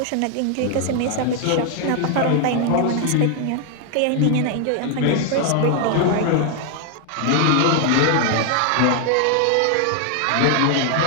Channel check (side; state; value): both; different; correlation 0.00